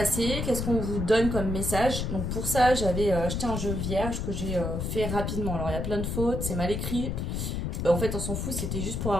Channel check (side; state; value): left; noise; rumble, 2 dB below the sound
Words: qu'est-ce qu'on vous donne comme message. Donc pour ça, j'avais acheté un jeu vierge que j'ai fait rapidement. Alors il y a plein de fautes, c'est mal écrit. En fait, on s'en fout, c'était juste pour